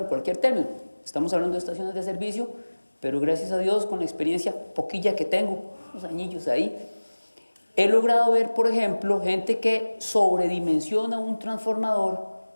cualquier término. Estamos hablando de estaciones de servicio, pero gracias a Dios, con la experiencia poquilla que tengo, unos añillos ahí, he logrado ver, por ejemplo, gente que sobredimensiona un transformador,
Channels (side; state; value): both; inverted; correlation -1.00